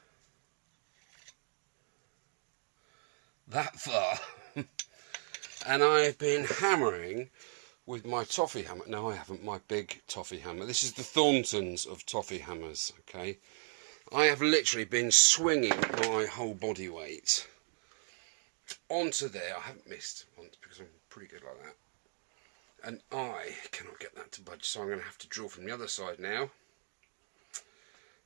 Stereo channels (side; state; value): left; silent; 53 dB below the other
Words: that far and I've been hammering with my toffee hammer. No, I haven't, my big toffee hammer. This is the Thorntons of toffee hammers, okay? I have literally been swinging my whole body weight onto there. I haven't missed once because I'm pretty good like that, and I cannot get that to budge, so I'm going to have to drill from the other side now